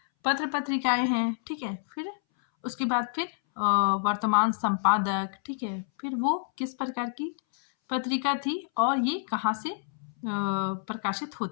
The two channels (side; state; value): right; silent; 59 dB below the other